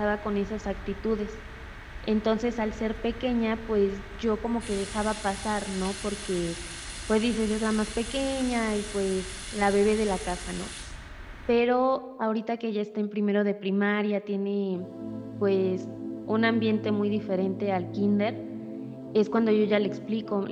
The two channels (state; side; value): identical; both; correlation 1.00